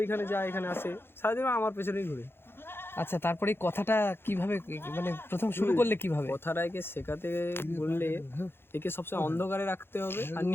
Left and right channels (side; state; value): right; late; 0.11 ms